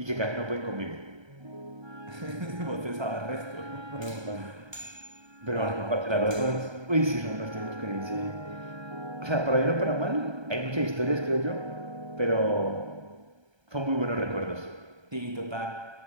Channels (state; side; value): late; left; 1.3 ms